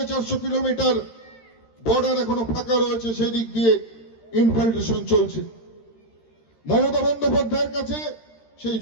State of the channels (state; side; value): late; right; 13 ms